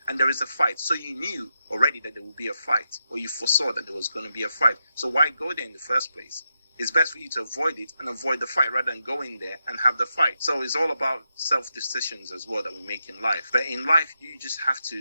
and there is a fight. So you knew already that there would be a fight, or you foresaw that there was going to be a fight. So why go there in the first place? It's best for you to avoid it and avoid the fight rather than go in there and have the fight. So it's all about self-decisions as well that we make in life. But in life, you just have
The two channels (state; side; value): inverted; both; correlation -0.86